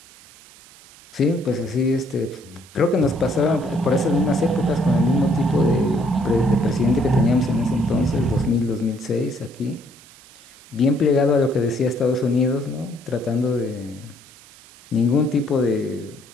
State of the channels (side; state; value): right; noise; hiss, 23 dB below the sound